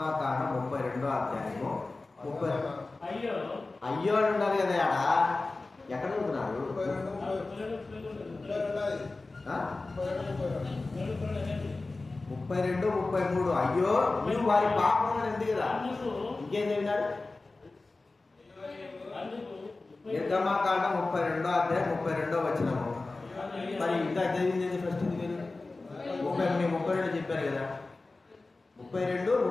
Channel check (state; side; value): quieter; right; 3.4 dB